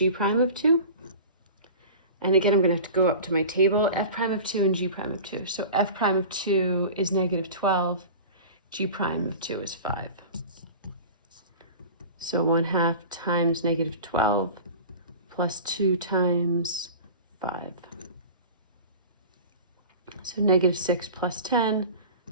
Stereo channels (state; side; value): inverted; both; correlation -0.36